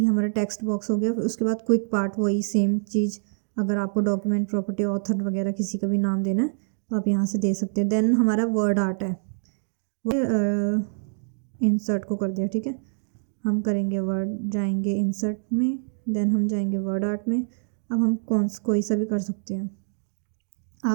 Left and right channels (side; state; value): left; silent; digital silence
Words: हमारा टेक्स्ट बॉक्स हो गया। फिर उसके बाद क्विक पार्ट, वही सेम चीज़, अगर आपको डॉक्यूमेंट, प्रॉपर्टी, ऑथर वगैरह किसी का भी नाम देना है तो आप यहाँ से दे सकते हैं। देन हमारा वर्ड आर्ट है, वो इंसर्ट को कर दिया, ठीक है। हम करेंगे वर्ड, जाएंगे इंसर्ट में, देन हम जाएंगे वर्ड आर्ट में। अब हम कोई सा भी कर सकते हैं,